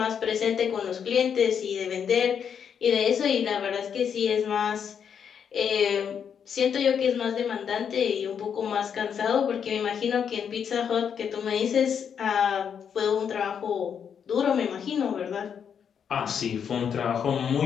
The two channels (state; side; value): quieter; right; 7.6 dB